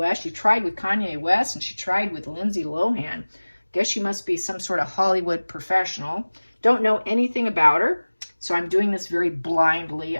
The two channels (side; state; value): both; inverted; correlation -1.00